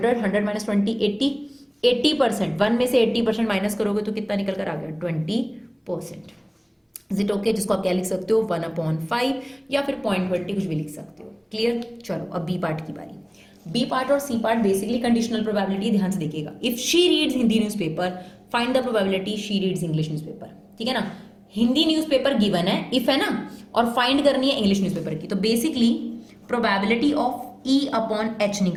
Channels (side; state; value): both; identical; correlation 1.00